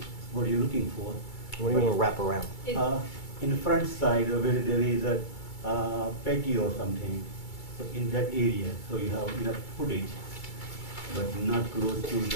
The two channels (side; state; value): right; late; 2.3 ms